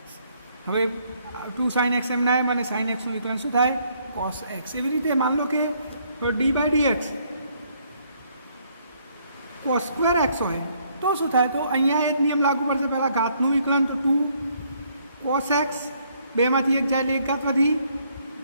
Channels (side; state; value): both; inverted; correlation -0.68